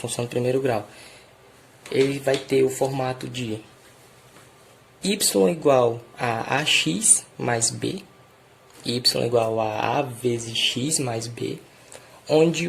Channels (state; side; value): identical; both; correlation 1.00